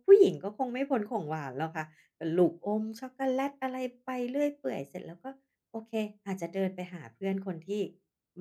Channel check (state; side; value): identical; both; correlation 1.00